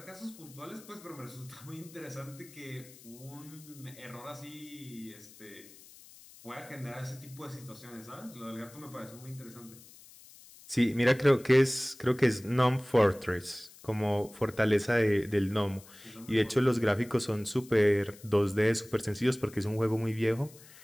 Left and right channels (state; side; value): noise; left; hiss, 21 dB below the sound